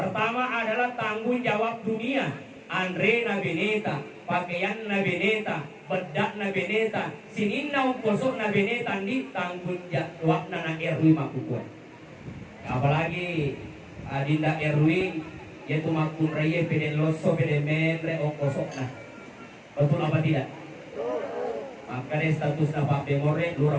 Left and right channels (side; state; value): both; identical; correlation 1.00